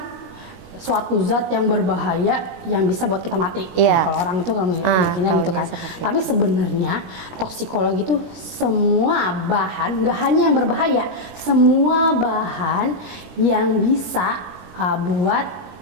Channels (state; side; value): late; left; 17 ms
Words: suatu zat yang berbahaya yang bisa buat kita mati. Kalau orang itu mikirnya gitu kan. Tapi sebenarnya toksikologi itu semua bahan, nggak hanya yang berbahaya, semua bahan yang bisa buat